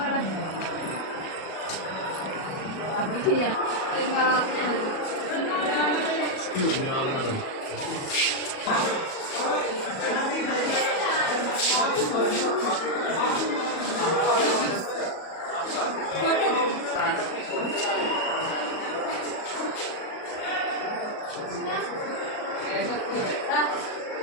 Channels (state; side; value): late; right; 37 ms